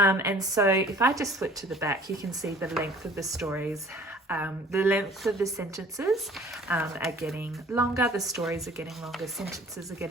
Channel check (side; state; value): both; normal; correlation 0.51